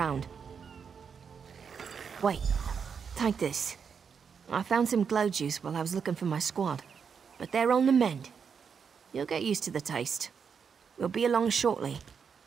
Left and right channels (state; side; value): quieter; left; 6.5 dB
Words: Wait, take this. I found some glow juice while I was looking for my squad, but they're on the mend. You'll get used to the taste. We'll be along shortly.